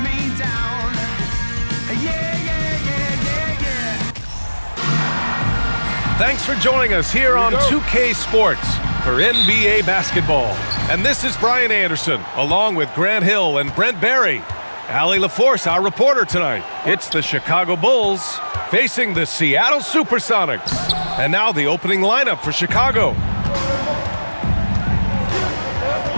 me down. Yeah, yeah, yeah, yeah, yeah. Thanks for joining us here on 2K Sports for NBA basketball. And this is Brian Anderson, along with Grant Hill and Brent Barry. Allie LaForce, our reporter tonight. It's the Chicago Bulls facing the Seattle Supersonics. And now the opening lineup for Chicago.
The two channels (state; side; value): inverted; both; correlation -1.00